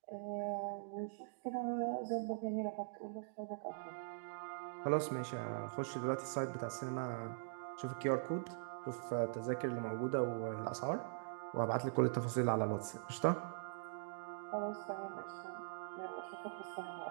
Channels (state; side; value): silent; left; digital silence